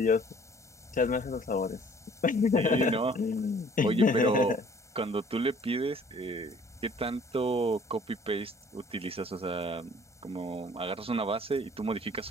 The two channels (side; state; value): both; normal; correlation 0.55